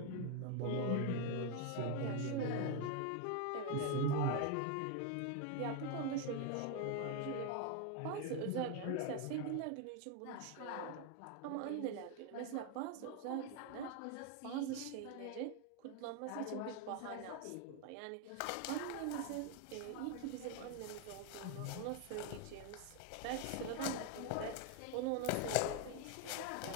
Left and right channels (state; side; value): different; both; correlation 0.01